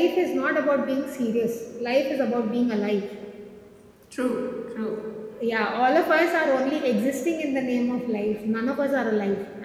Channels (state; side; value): identical; both; correlation 1.00